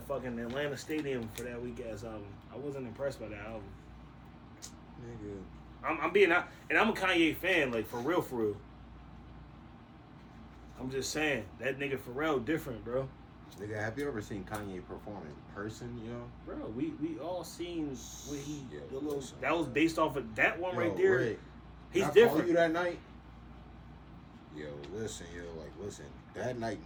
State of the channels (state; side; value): identical; both; correlation 1.00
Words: fucking Atlanta Stadium for that weak ass album. I wasn't impressed by that album. Nigga. I'm being out, and I'm a Kanye fan, like for real, for real. I'm just saying that nigga Pharrell different, bro. Nigga, have you ever seen Kanye perform in person, yo? Bro, we all seen what he Yeah, the little, that was based off of that one right Yo, there. Rick, He's I different. called you that night. Yo, listen, that night